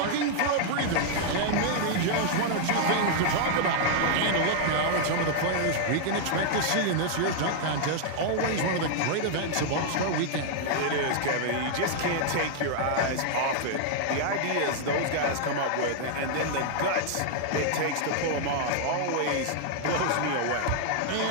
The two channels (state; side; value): different; both; correlation 0.00